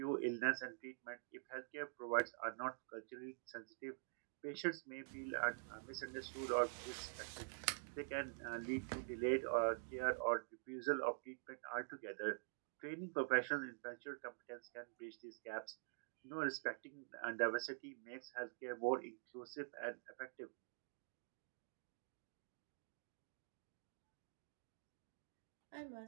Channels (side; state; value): left; silent; digital silence